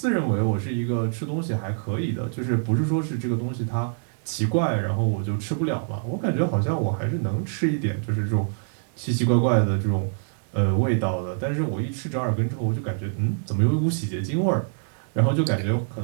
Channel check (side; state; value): left; silent; digital silence